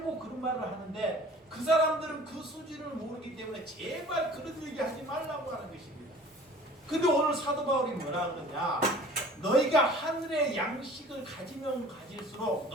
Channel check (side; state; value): both; normal; correlation 0.47